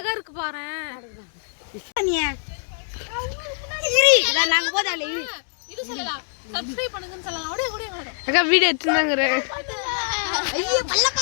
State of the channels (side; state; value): right; silent; digital silence